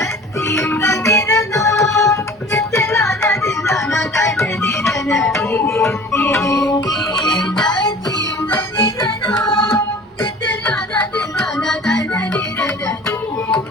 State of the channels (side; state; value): both; normal; correlation 0.44